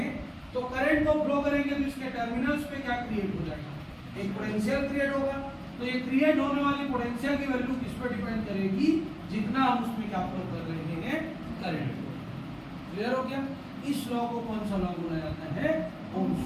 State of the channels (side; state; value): both; identical; correlation 1.00